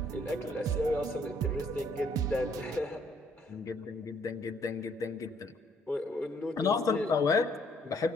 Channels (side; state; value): both; normal; correlation 0.66